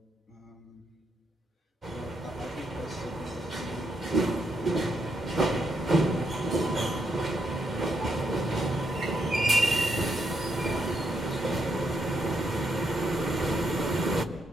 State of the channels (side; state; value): both; normal; correlation 0.79